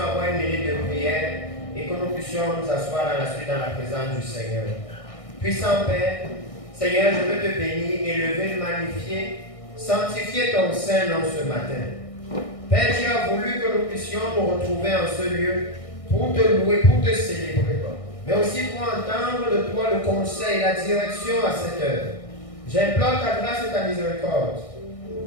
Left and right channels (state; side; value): late; right; 1.6 ms